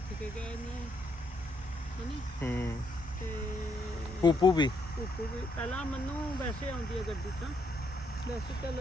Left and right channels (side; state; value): both; normal; correlation 0.74